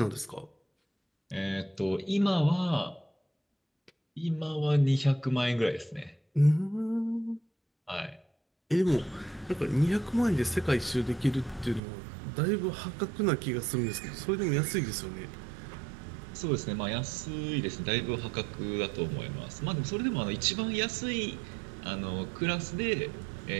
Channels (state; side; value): drops out; left; at 11.8 s